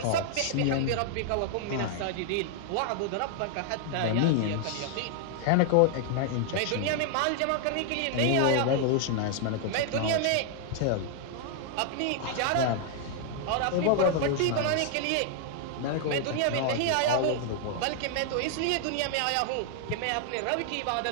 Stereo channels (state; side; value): different; both; correlation 0.00